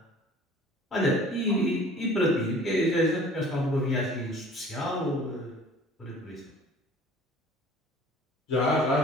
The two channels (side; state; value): both; normal; correlation 0.48